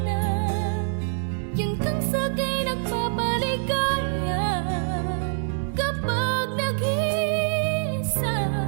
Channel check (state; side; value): silent; left; 60 dB below the other